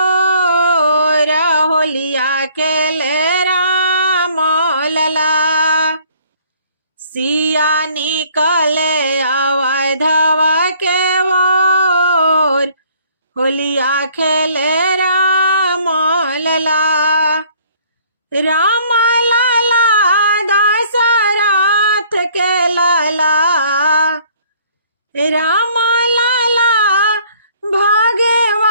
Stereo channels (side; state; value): both; inverted; correlation -0.59